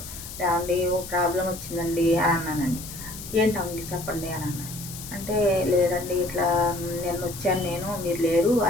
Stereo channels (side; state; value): left; noise; hiss, 12 dB below the sound